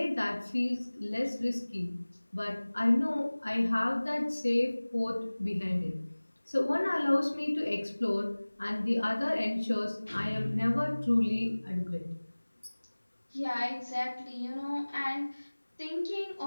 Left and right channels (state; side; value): inverted; both; correlation -1.00